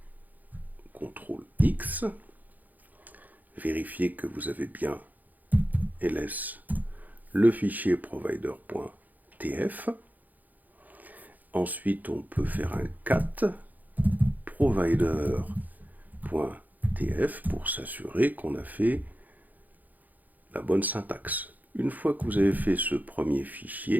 CTRL-X, vérifiez que vous avez bien ls le fichier provider.tf. Ensuite, on peut faire un cat provider.tf pour s'assurer qu'on a fait la bonne syntaxe. Une fois que vous avez fait ce premier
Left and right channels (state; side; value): late; left; 0.082 ms